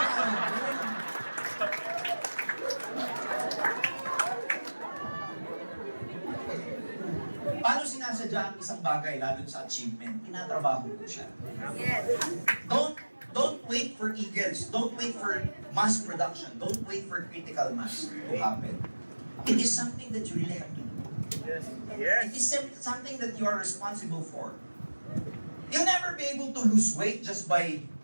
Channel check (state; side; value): inverted; both; correlation -1.00